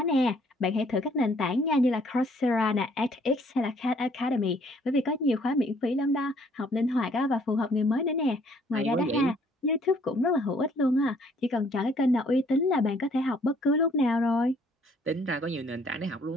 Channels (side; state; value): both; normal; correlation 0.62